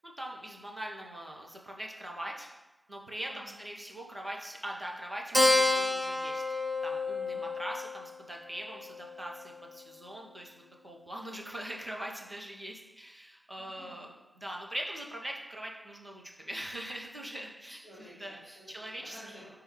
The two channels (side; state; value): both; normal; correlation 0.91